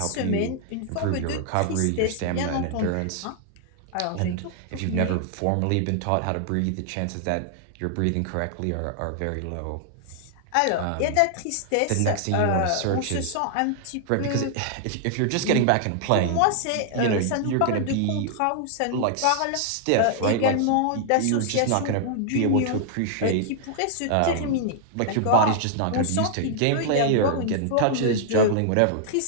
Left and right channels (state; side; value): different; both; correlation -0.01